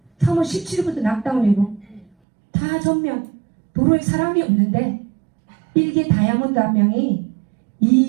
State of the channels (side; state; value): left; drops out; at 2.1 s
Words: 3월 17일부터 낙다운이고 다 전면 도로에 사람이 없는데 일개 다이아몬드 한 명이